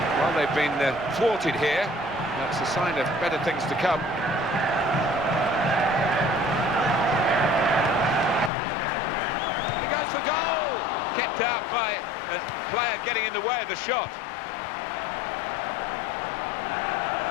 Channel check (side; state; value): right; drops out; at 8.5 s